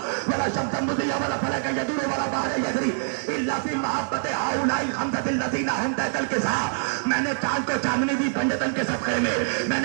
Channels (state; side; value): silent; left; digital silence